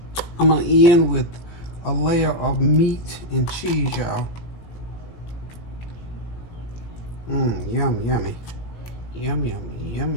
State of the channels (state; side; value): late; right; 18 ms